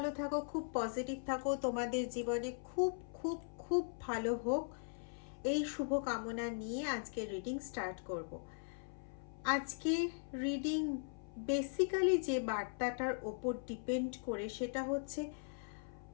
থাকো, খুব পজিটিভ থাকো, তোমাদের জীবনে খুব খুব খুব ভালো হোক, এই শুভ কামনা নিয়ে আজকে রিডিং স্টার্ট করব। আজকে রিডিং বেসিক্যালি যে বার্তাটার ওপর ডিপেন্ড করে সেটা হচ্ছে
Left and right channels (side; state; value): right; silent; 51 dB below the other